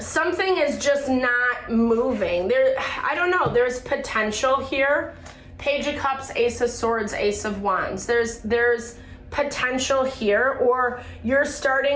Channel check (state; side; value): identical; both; correlation 1.00